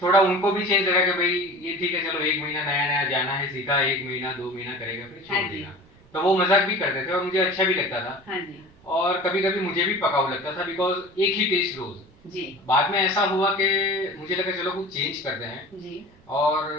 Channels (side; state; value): both; normal; correlation 0.38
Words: थोड़ा उनको भी चेंज लगा कि भाई ये ठीक है, चलो 1 महीना नया नया जाना है, सीखा 1 महीना 2 महीना करेगा फिर छोड़ देगा। तो वो मजाक भी करते थे और मुझे अच्छा भी लगता था। हाँ जी। और कभी कभी मुझे भी पकाऊ लगता था बिकॉज एक ही टेस्ट रोज जी। बाद में ऐसा हुआ कि मुझे लगा चलो कुछ चेंज करते हैं जी। और